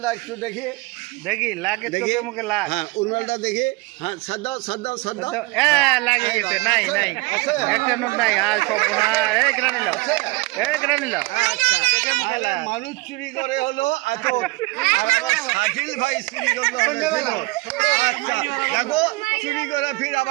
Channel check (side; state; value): left; quieter; 23.8 dB